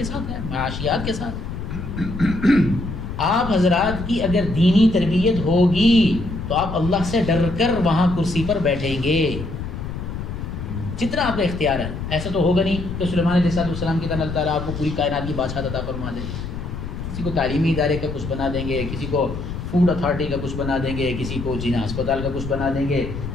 ساتھ ہے، معاشیات کے ساتھ۔ آپ حضرات کی اگر دینی تربیت ہوگی تو آپ اللہ سے ڈر کر وہاں کرسی پر بیٹھیں گے جتنا آپ کا اختیار ہے۔ ایسا تو ہوگا نہیں کہ سلیمان علیہ السلام کی طرح اللہ تعالیٰ آپ کو پوری کائنات کی بادشاہت عطا فرما دے، کسی کو تعلیمی ادارے کا کچھ بنا دیں گے، کسی کو فوڈ اتھارٹی کا کچھ بنا دیں گے، کسی کو جینا ہسپتال کا کچھ بنا دیں گے،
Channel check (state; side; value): noise; left; rumble, 7 dB below the sound